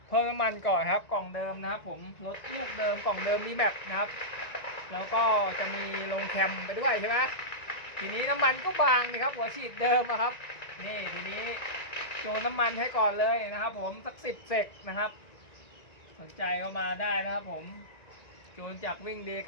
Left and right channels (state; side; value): late; right; 1.9 ms